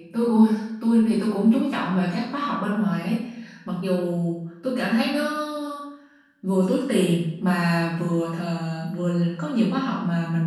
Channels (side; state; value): both; identical; correlation 1.00